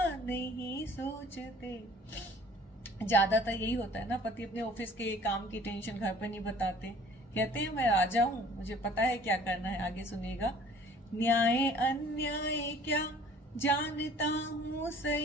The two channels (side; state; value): both; normal; correlation 0.51